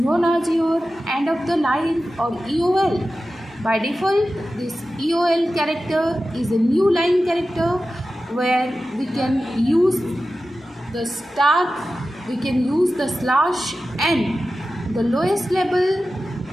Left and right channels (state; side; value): normal; both; correlation 0.94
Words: as your end of the line or EOL. By default, this EOL character is a new line character where we can use the star, we can use the /n. The lowest level